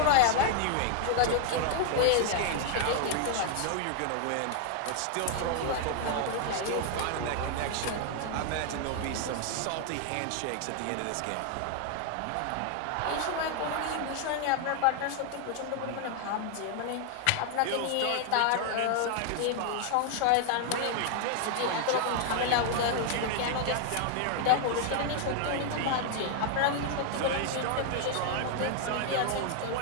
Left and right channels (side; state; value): both; different; correlation 0.00